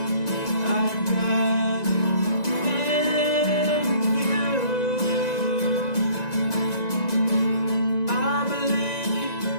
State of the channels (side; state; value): right; late; 1.9 ms